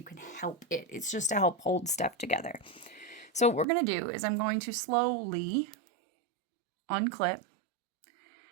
can help it. It's just to help hold stuff together. So what we're going to do is I'm going to slowly unclip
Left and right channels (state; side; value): drops out; left; at 3.7 s